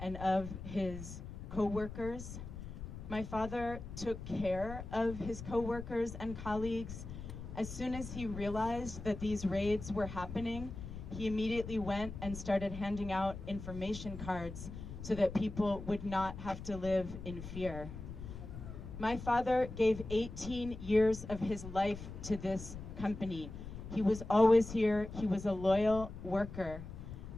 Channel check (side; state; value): left; noise; rumble, 10 dB below the sound